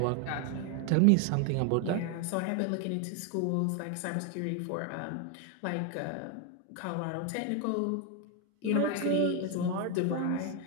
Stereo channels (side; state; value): both; different; correlation 0.01